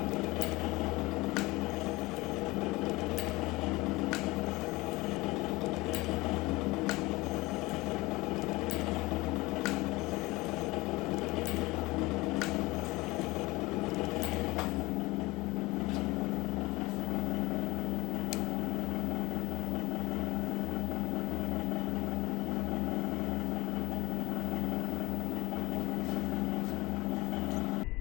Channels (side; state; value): right; quieter; 21.4 dB